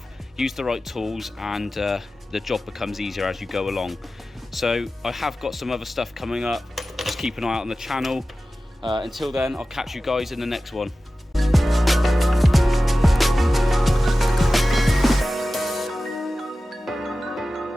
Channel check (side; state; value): both; normal; correlation 0.95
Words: use the right tools, and the job becomes easier as you go along. So I have got some other stuff coming up, just keep an eye out on the channel. Until then, I'll catch you guys in the next one.